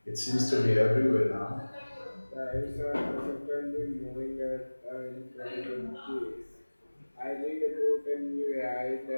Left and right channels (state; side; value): inverted; both; correlation -1.00